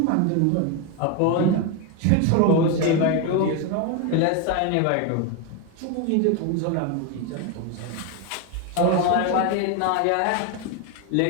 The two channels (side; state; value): both; different; correlation 0.02